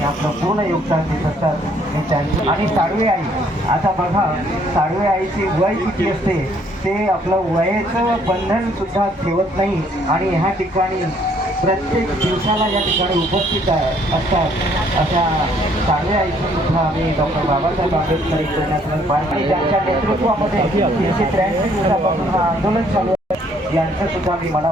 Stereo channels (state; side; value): normal; both; correlation 0.64